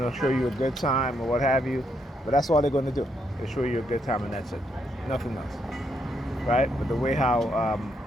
show you a good time or what have you. But that's all they're going to do. They show you a good time and that's it. Nothing else. Right? But the way how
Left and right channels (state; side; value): normal; both; correlation 0.76